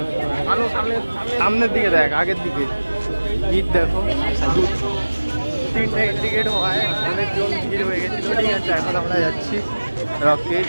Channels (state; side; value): inverted; both; correlation -1.00